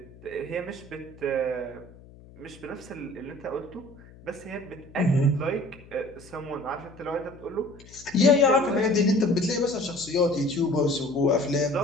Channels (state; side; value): noise; left; hum, 21 dB below the sound